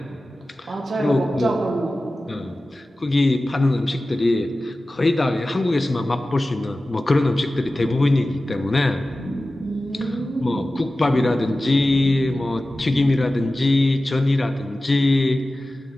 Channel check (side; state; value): both; normal; correlation 0.95